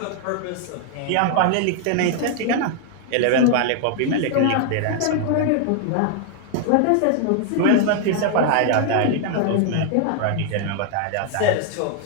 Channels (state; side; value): different; both; correlation 0.00